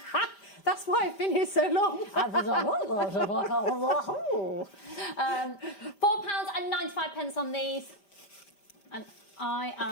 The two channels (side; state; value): right; late; 5.0 ms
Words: That's why I've been here so long. £4.95 on these. And I